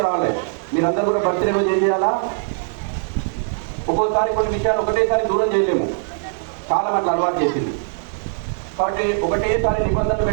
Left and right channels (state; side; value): silent; left; digital silence